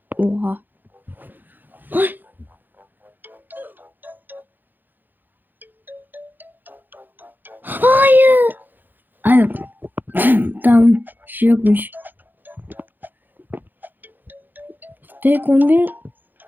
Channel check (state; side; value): late; left; 0.088 ms